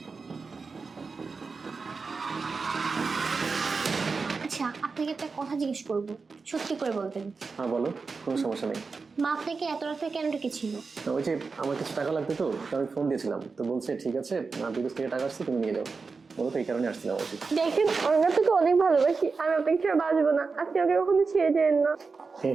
আচ্ছা আপনাকে একটা কথা জিজ্ঞেস করবো, সত্যি করে বলবেন। হ্যাঁ বলো, কোনো সমস্যা নেই। মা আপনাকে এত রাতে কেন ডেকেছিল? ওই যে আমার কিছু টাকা লাগতো, তো আমি ফোন দিয়েছিলাম, তো বলছে ঠিক আছে, বিদেশ থেকে টাকা আসছে, তুমি নিয়ে যাও। বলো তো এই কারণে আসছিলাম আর কি। দেখেন আমরা তোকে অনেক ভালোবাসি, আমি আপনাকে ছেড়ে বাঁচবো না, আপনি ওকে কখনো ছেড়ে যেন না। হ্যাঁ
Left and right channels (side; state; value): left; quieter; 4.6 dB